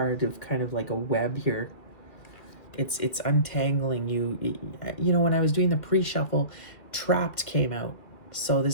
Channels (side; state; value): right; late; 2.4 ms